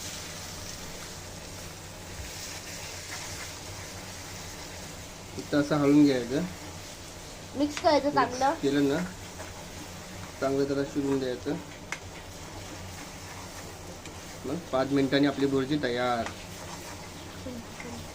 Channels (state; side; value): identical; both; correlation 1.00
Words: इथं असं हळून घ्यायचं. मिक्स करायचं चांगलं. केलं ना, चांगलं त्याला शिजवून द्यायचं. मग 5 मिनिटांनी आपली भुर्जी तयार.